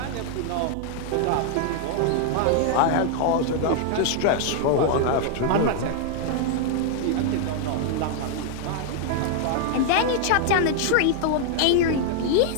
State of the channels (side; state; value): both; different; correlation 0.00